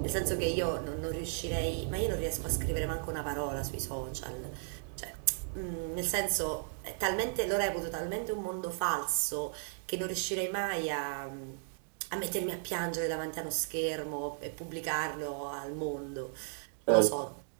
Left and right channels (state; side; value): silent; left; digital silence